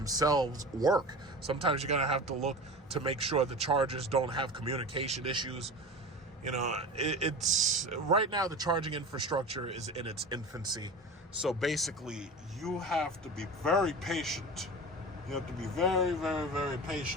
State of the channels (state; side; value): normal; both; correlation 0.32